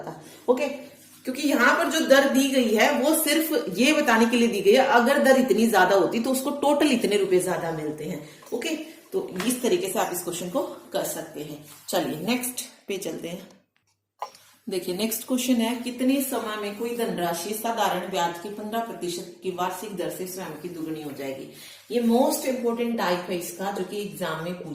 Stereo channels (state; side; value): identical; both; correlation 1.00